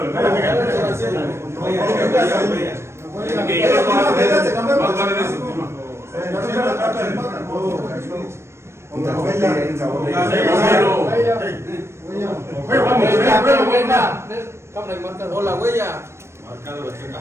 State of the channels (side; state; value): left; late; 0.13 ms